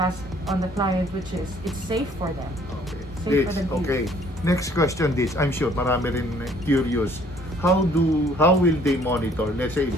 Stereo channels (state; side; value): normal; both; correlation 0.59